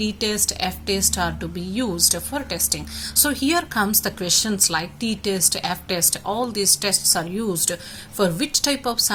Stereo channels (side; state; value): both; identical; correlation 1.00